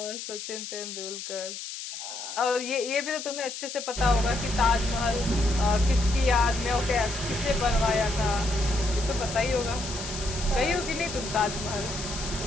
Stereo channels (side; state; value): left; noise; hiss, 8 dB below the sound